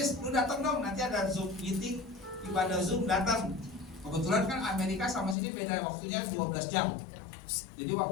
lu datang dong, nanti ada Zoom meeting, ibadah Zoom datang." Kebetulan kan Amerika sama sini beda waktunya 12 jam. Jadi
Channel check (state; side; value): drops out; right; at 5.4 s